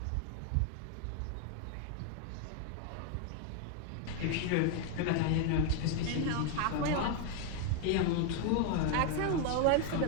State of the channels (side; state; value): both; different; correlation 0.01